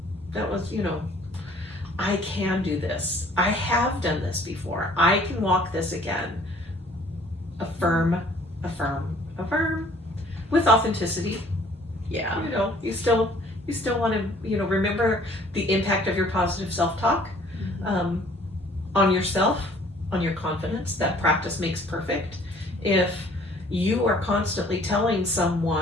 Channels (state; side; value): normal; both; correlation 0.56